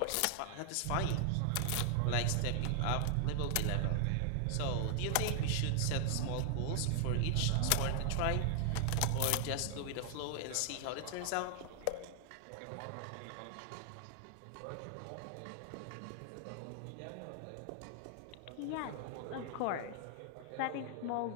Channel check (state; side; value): different; both; correlation 0.00